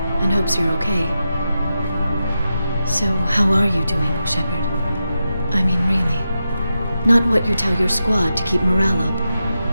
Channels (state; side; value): inverted; both; correlation -0.89